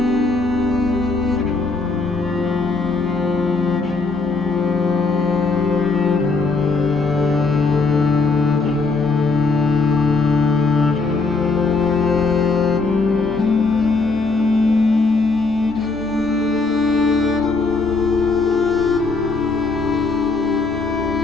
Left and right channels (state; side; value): quieter; right; 3.9 dB